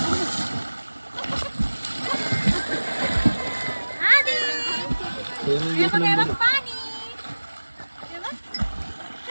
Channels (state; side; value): inverted; both; correlation -1.00